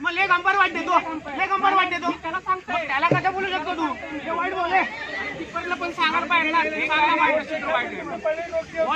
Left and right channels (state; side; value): identical; both; correlation 1.00